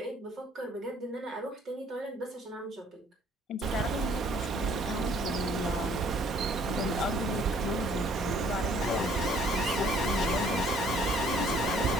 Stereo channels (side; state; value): both; normal; correlation 0.60